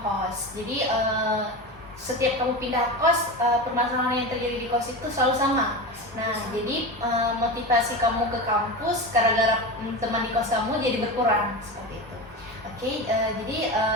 kos. Jadi setiap kamu pindah kos, permasalahan yang terjadi di kos itu selalu sama. Nah, jadi motivasi kamu ke kampus gara-gara teman di kos kamu jadi berkurang seperti itu. Oke, jadi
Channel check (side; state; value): both; normal; correlation 0.24